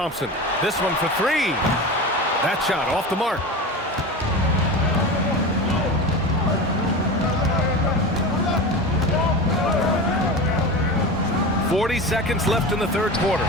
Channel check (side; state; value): both; normal; correlation 0.28